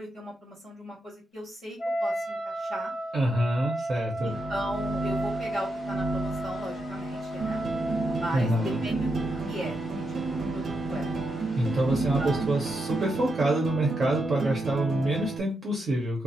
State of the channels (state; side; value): normal; both; correlation 0.84